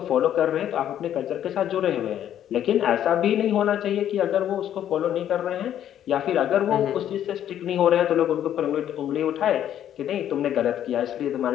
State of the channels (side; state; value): right; quieter; 10.7 dB